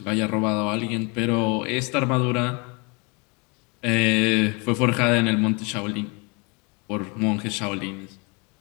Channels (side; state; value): right; quieter; 30.9 dB